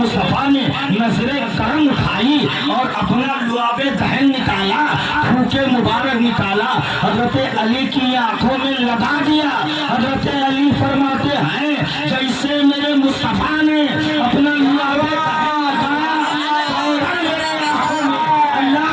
نے نظر کرم اٹھائی اور اپنا لعاب دہن نکالا، پھوکے مبارک نکالا، حضرت علی کی آنکھوں میں لگا دیا۔ حضرت علی فرماتے ہیں جیسے میرے مصطفیٰ نے اپنا لعاب دہن نکالا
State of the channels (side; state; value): both; identical; correlation 1.00